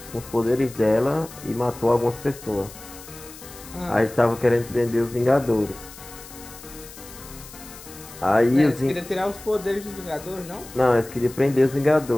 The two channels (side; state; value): left; noise; hiss, 17 dB below the sound